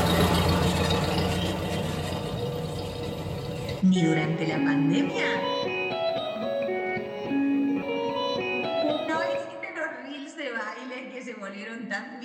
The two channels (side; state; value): both; identical; correlation 1.00